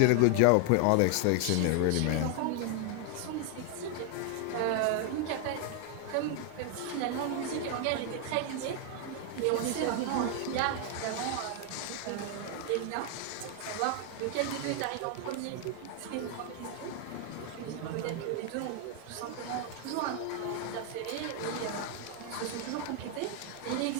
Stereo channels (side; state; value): both; different; correlation 0.00